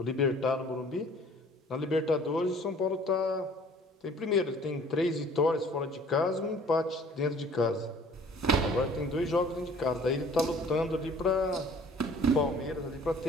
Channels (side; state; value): both; normal; correlation 0.52